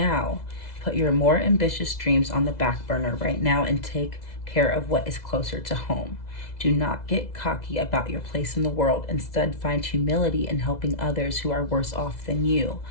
Put your more ambitious dreams on the back burner right now and take care of what is closer to home. Do not get cocky about your place in the world. Instead, find humility in helping others who are worse off than you.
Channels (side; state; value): right; late; 2.0 ms